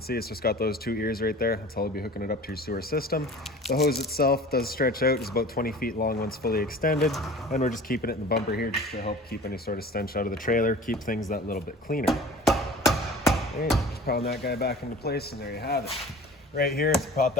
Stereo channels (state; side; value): normal; both; correlation 0.42